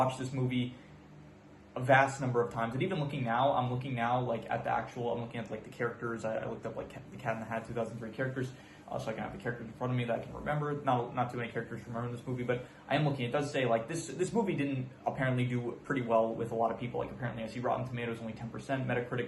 this movie a vast number of times. And even looking now, I'm looking like at the actual. I'm looking at like the characters. I looked up like The Cat in the Hat 2003 characters. So I can have the characters in front of me that I can remember. Not too many characters to remember in this movie, but I am looking. It does say like this movie didn't apparently do pretty well with a lot of people. Like apparently I see Rotten Tomatoes only 10%,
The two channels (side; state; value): both; identical; correlation 1.00